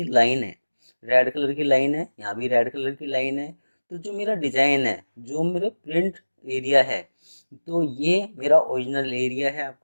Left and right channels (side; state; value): both; inverted; correlation -1.00